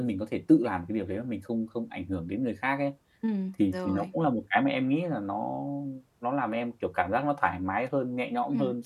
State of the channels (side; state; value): both; identical; correlation 1.00